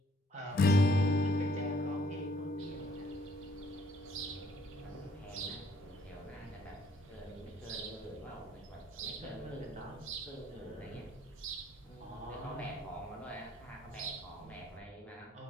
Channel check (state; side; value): normal; both; correlation 0.63